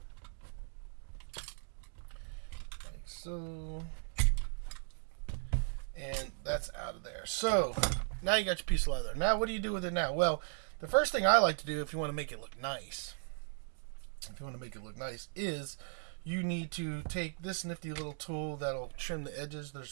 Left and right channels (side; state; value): left; silent; digital silence